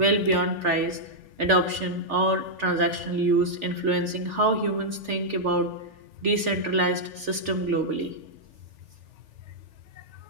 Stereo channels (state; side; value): late; left; 3.4 ms